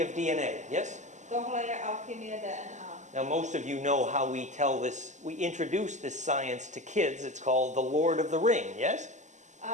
of DNA, yes? Tohle je alchymie DNA. Now most of you know how we tell this, we introduce this science to kids. It's called the Lord of the Ring, yes?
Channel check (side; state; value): left; late; 0.34 ms